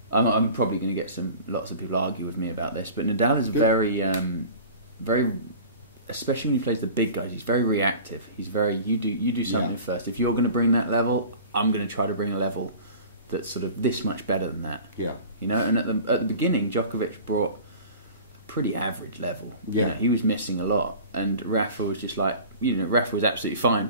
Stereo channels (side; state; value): both; inverted; correlation -0.41